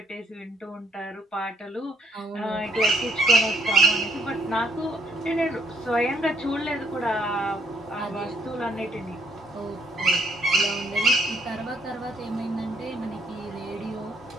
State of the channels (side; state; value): both; normal; correlation 0.67